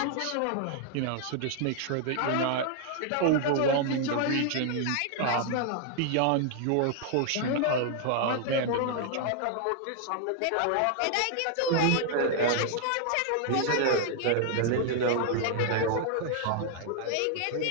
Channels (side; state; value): both; different; correlation 0.00